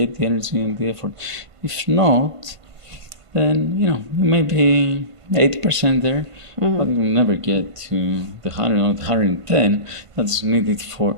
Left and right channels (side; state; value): left; late; 1.5 ms